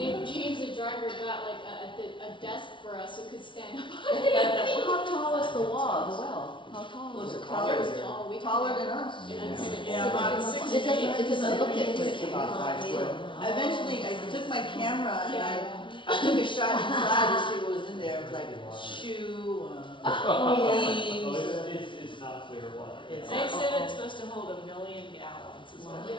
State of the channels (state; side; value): late; right; 0.24 ms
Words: James the driver got like a desk for us so we could stand up. How tall is the wall, the well? How tall Was is it it? taller? It was tall. We Taller couldn't- than us. Yeah, about 6 It doesn't, feet. it doesn't look it. It's about 5 foot. Eventually, I took my camera and Yeah. I took a shot inside to see what was in there. It was like shoe, Oh, leaves. it's not clear water. It's- They said it's supposed to hold 1 million gallons is what they